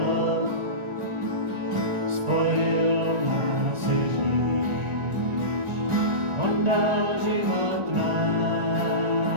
spojil nás Ježíš, on dal život nám.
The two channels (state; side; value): late; left; 1.4 ms